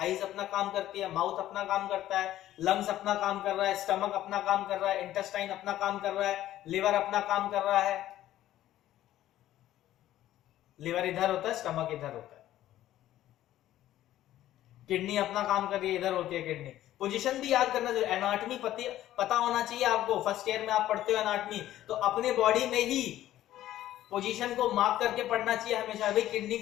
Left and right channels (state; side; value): quieter; right; 13.5 dB